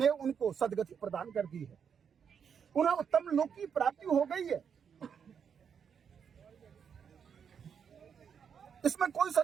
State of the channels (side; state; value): left; quieter; 7.2 dB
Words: उनको सदगति प्रदान कर दी है, उन्हें उत्तम लोक की प्राप्ति हो गई है, इसमें कोई